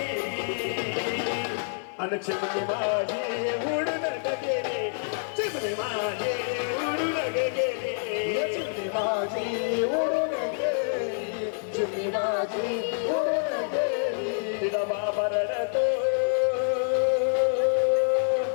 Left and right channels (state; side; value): silent; right; 60 dB below the other